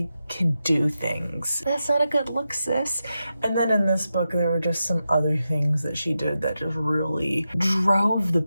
can do things. That's not a good look, sis. And then in this book, there were just some other things that she did that just really drove the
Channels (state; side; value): inverted; both; correlation -0.89